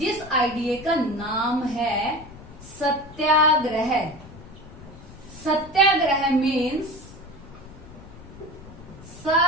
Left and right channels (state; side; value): noise; left; rumble, 17 dB below the sound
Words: आइडिया का नाम है satyagraha. Satyagraha means